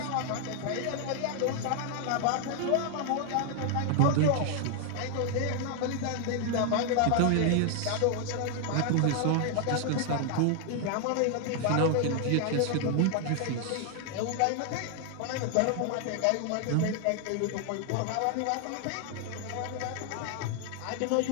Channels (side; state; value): both; different; correlation 0.00